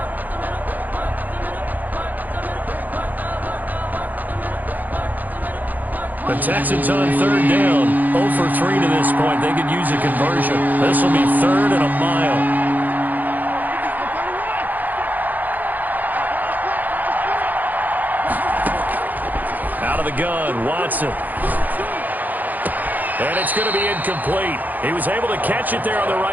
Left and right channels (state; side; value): late; left; 0.083 ms